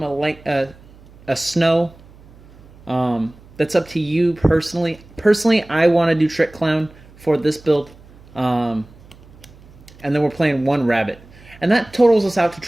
a snow. That's up to you personally. Personally, I want to do Trick Clown for this build. And then we're playing 1 rabbit. And that totals us out to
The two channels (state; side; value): noise; right; hum, 23 dB below the sound